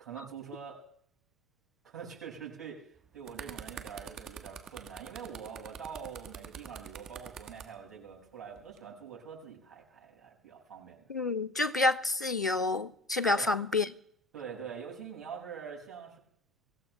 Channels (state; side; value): normal; both; correlation 0.43